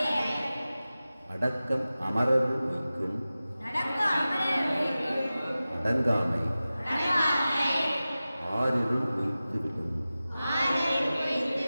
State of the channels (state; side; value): inverted; both; correlation -0.96